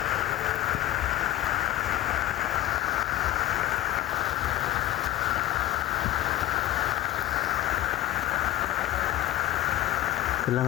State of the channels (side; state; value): right; quieter; 15.2 dB